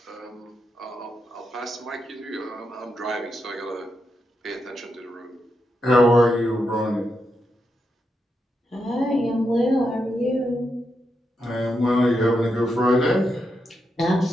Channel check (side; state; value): both; normal; correlation 0.84